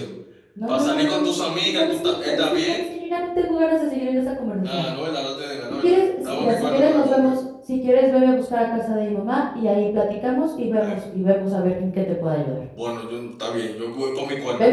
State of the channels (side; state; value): both; identical; correlation 1.00